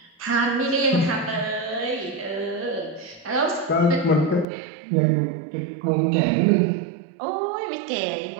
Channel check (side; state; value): left; drops out; at 4.5 s